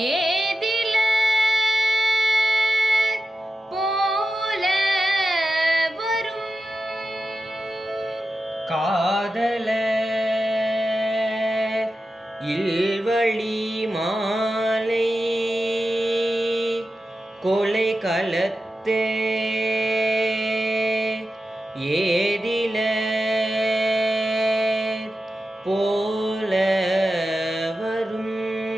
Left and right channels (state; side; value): normal; both; correlation 0.91